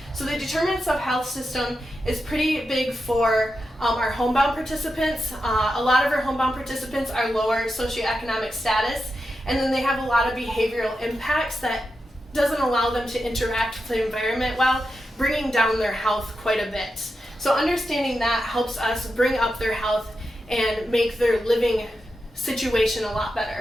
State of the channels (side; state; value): both; normal; correlation 0.89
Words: So the determinants of health system is pretty big for our homebound participants. A lot of our homebound participants are lower socioeconomic status, and then they have a lot of behavioral impacts that doesn't allow them to interact with the environment well, bringing down their health quite a bit. So understanding that helps us bring up their health and make their living situation a lot